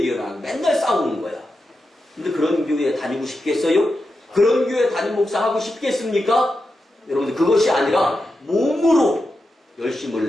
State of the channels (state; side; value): normal; both; correlation 0.89